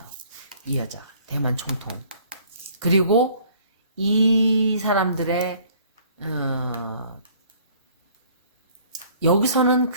이 여자 대만 총통. 그리고 이 사람들의 여기서는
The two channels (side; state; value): both; inverted; correlation -0.57